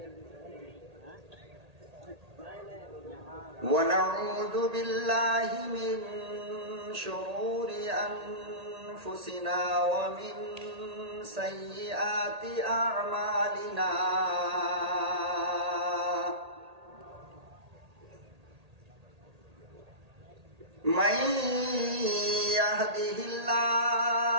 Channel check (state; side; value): late; left; 1.8 ms